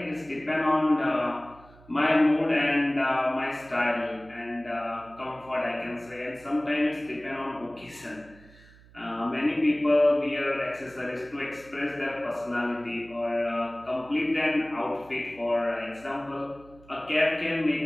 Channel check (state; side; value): noise; right; hum, 24 dB below the sound